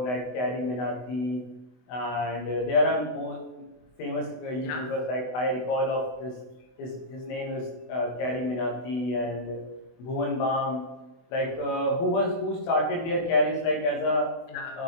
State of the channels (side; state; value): right; late; 24 ms